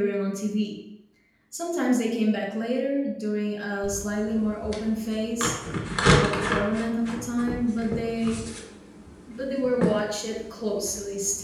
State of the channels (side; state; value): both; identical; correlation 1.00